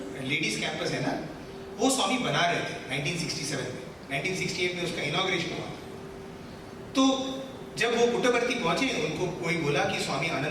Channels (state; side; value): identical; both; correlation 1.00